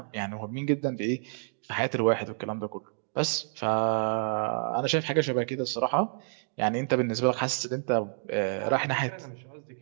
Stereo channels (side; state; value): left; silent; digital silence